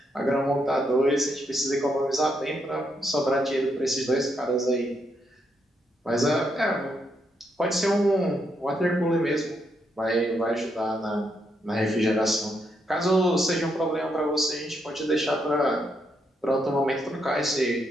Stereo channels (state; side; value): normal; both; correlation 0.78